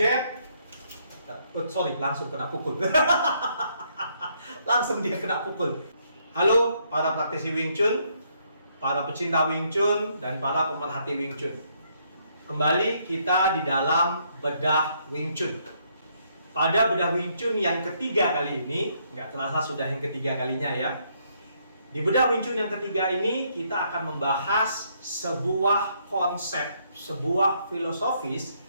langsung kena pukul. Langsung dia kena pukul. Halo para praktisi Wing Chun, para pecinta Wing Chun, dan para pemerhati Wing Chun. Kembali kita di dalam bedah Wing Chun. Pada bedah Wing Chun yang ketiga kali ini, nggak terasa sudah yang ketiga kalinya ya. Di bedah Wing Chun yang ketiga ini, kita akan membahas sebuah konsep, sebuah filosofis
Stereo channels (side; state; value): both; inverted; correlation -0.72